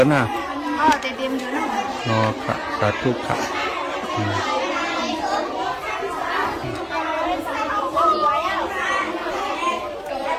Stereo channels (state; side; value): identical; both; correlation 1.00